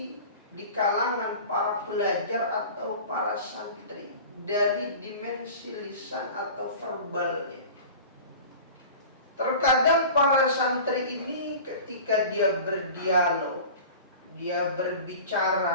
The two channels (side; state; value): both; inverted; correlation -0.38